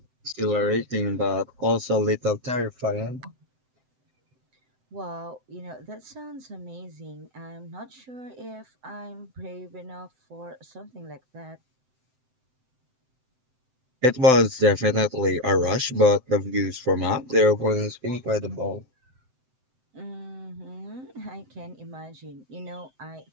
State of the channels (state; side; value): late; left; 7.8 ms